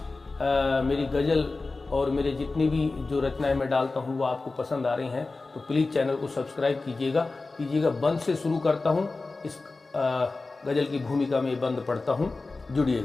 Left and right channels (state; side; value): quieter; right; 3.6 dB